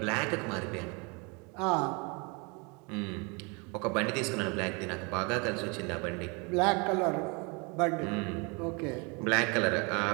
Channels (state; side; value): quieter; left; 30.6 dB